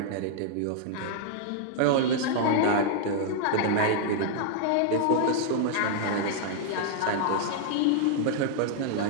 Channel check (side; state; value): both; different; correlation -0.01